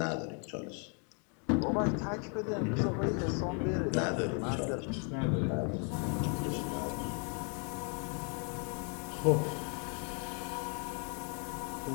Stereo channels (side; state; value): right; quieter; 38.1 dB